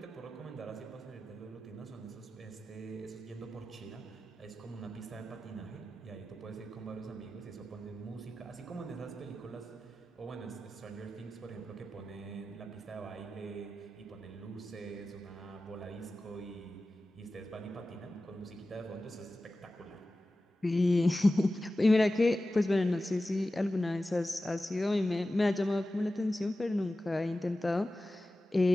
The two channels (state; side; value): normal; both; correlation 0.94